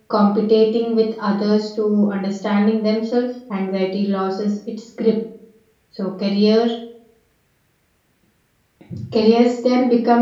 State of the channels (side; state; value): both; identical; correlation 1.00